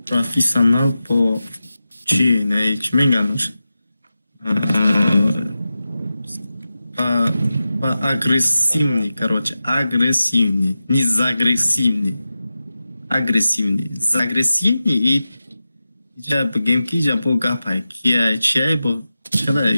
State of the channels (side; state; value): both; inverted; correlation -0.93